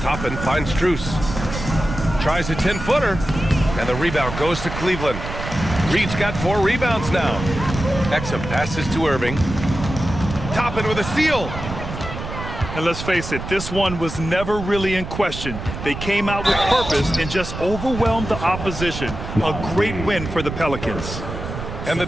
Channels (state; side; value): noise; right; rumble, 8 dB below the sound